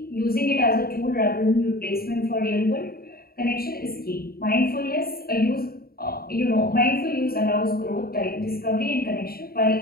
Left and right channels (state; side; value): late; right; 0.44 ms